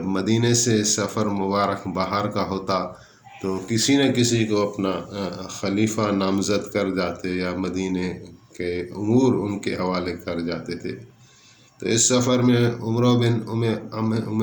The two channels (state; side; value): identical; both; correlation 1.00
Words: مدینے سے سفر مبارک باہر کا ہوتا تو کسی نہ کسی کو اپنا خلیفہ نامزد کر جاتے، یا مدینے کے امور ان کے حوالے کر جاتے تھے۔ تو اس سفر میں عمر بن ام